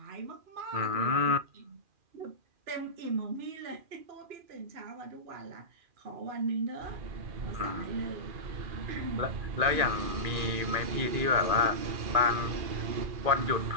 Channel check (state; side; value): late; left; 2.4 ms